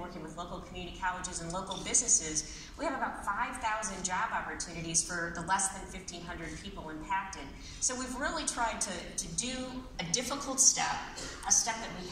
with local community colleges and local businesses, we have about 5,000 job opportunities for the less than 1,500 people impacted. So we've really tried to do a difficult step, a step that we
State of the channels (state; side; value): identical; both; correlation 1.00